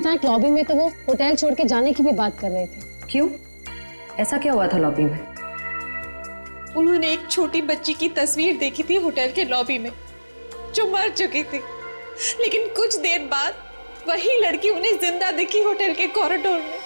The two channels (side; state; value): both; inverted; correlation -1.00